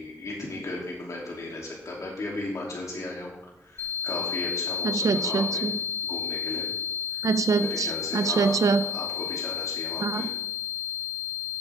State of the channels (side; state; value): both; normal; correlation 0.32